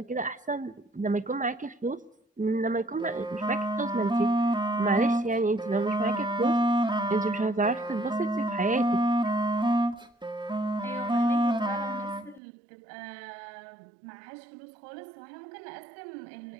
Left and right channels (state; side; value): drops out; left; at 12.4 s